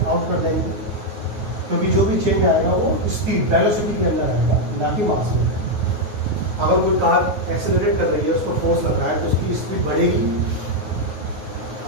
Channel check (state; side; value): late; left; 9.4 ms